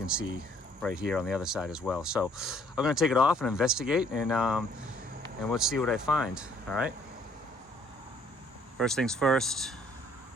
see right here on the other side as well. So I'm gonna take it off and investigate, and let's see what I find, all right? First things first,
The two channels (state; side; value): normal; both; correlation 0.62